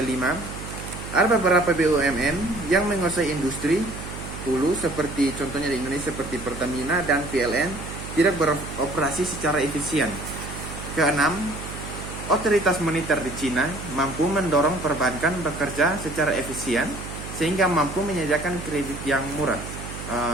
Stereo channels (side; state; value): right; noise; hum, 10 dB below the sound